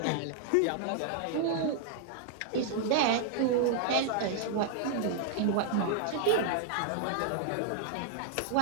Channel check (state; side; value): different; both; correlation -0.01